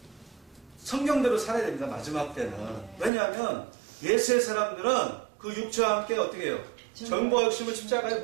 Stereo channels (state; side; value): drops out; left; at 3.1 s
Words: 성경대로 살아야 됩니다. 마지막 때는. 왜냐하면 예수의 사람들은 그 육체와 함께 어떻게 해요? 정과 욕심을 십자가에